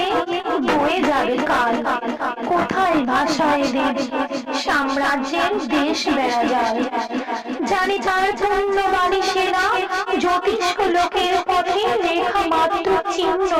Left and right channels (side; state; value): both; identical; correlation 1.00